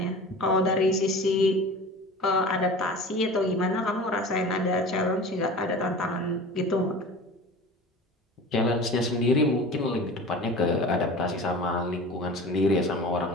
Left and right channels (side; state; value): both; normal; correlation 0.37